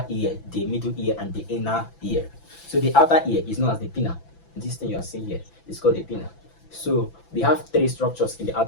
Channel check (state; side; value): late; right; 6.0 ms